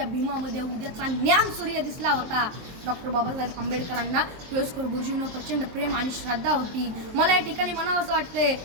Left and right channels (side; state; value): left; late; 23 ms